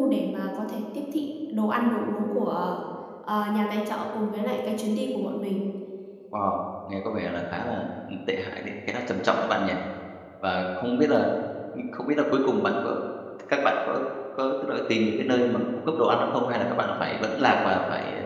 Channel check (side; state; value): both; identical; correlation 1.00